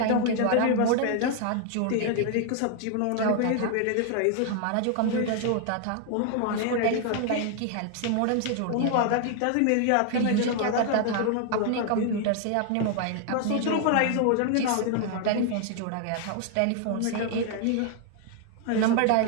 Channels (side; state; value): both; different; correlation 0.00